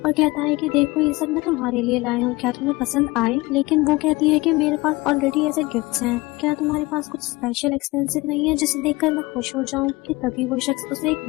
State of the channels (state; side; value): quieter; right; 22.0 dB